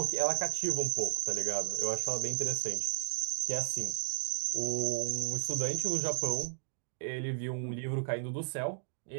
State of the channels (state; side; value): silent; left; digital silence